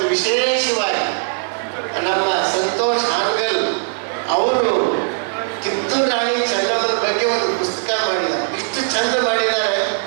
ವಿಶೇಷವಾಗಿ ನಮ್ಮ ಸಂತೋಷ್ ಹಾನ್ಗಲ್ ಅವರು ಕಿತ್ತೂರು ರಾಣಿ ಚೆನ್ನಮ್ಮನ ಬಗ್ಗೆ ಒಂದು ಪುಸ್ತಕ ಮಾಡಿದ್ದಾರೆ. ಇಷ್ಟು ಚಂದ ಮಾಡಿದ್ದಾರೆ,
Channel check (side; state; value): left; silent; 61 dB below the other